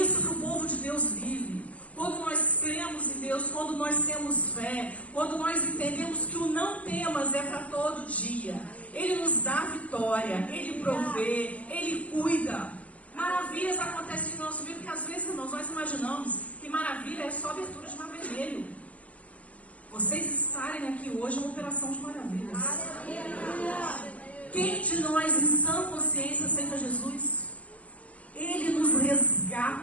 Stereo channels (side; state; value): right; late; 0.071 ms